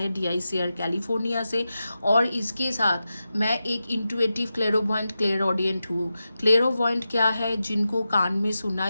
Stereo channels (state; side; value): inverted; both; correlation -0.92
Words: DICR कैलिफोर्निया से। और इसके साथ मैं एक इंट्यूटिव क्लेरोवॉइंट क्लेरऑडियंट हूँ। क्लेरोवॉइंट क्या है? जिनको कान में